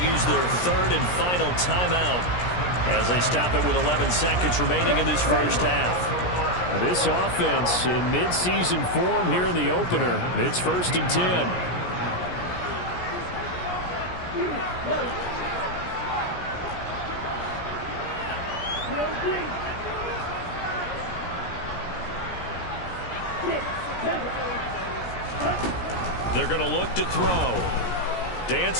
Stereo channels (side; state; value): right; late; 17 ms